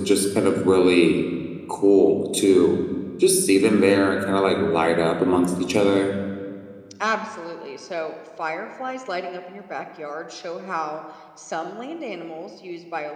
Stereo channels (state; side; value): identical; both; correlation 1.00